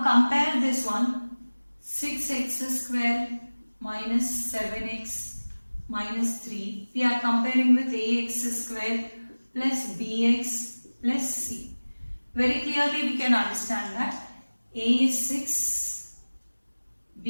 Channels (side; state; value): both; inverted; correlation -1.00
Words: compare this one. 6x square minus 7x minus 3. We are comparing with ax square plus bx plus c. Very clearly we can understand that a is 6,